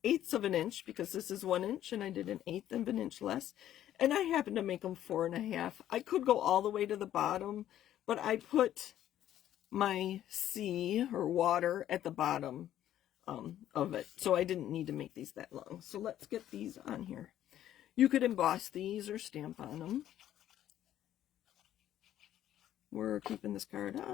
of an inch, because this is 1 inch and I did 1/8 of an inch less. And I happen to make them 4.5. I could go all the way to the bottom, but I put my sea or water at the bottom of it, so I didn't need to make these that long. So let's get these on here. You could emboss these or stamp on them. We're keeping this card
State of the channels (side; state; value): right; quieter; 11.9 dB